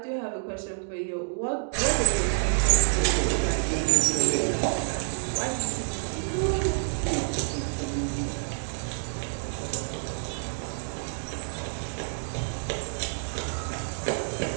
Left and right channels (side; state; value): left; silent; digital silence